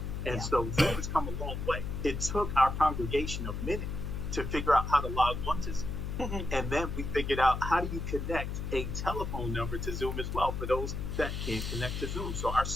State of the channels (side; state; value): left; noise; hum, 4 dB below the sound